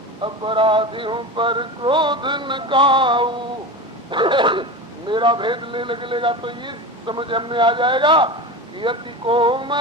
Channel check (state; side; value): normal; both; correlation 0.26